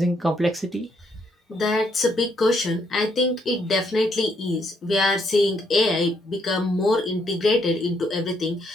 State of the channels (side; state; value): both; normal; correlation 0.73